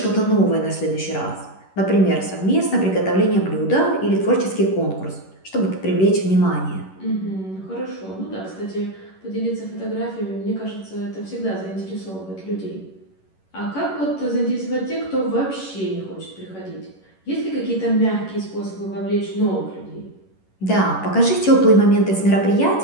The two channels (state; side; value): late; right; 11 ms